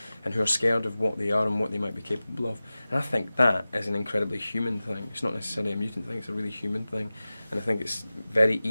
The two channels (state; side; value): inverted; both; correlation -0.96